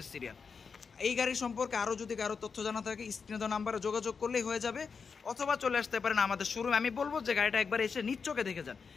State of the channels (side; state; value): right; quieter; 5.5 dB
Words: সিরিয়াল। এই গাড়ির সম্পর্কে আরও যদি কারো তথ্য জানা থাকে স্ক্রিনে দেওয়া নাম্বারে যোগাযোগ করলেই হয়ে যাবে, অথবা চলে আসতে পারেন আমাদের শোরুমে। আমি বলবো যে গাড়িটা একবার এসে নিজ চোখে দেখে যান,